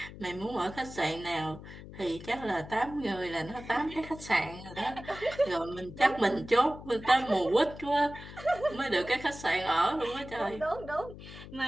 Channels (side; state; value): left; noise; hum, 14 dB below the sound